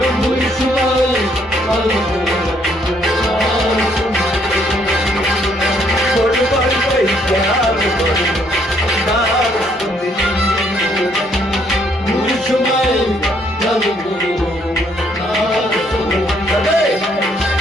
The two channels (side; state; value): both; normal; correlation 0.68